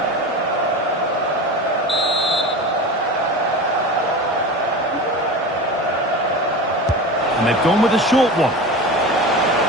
And they've gone with a short one.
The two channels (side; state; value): both; normal; correlation 0.30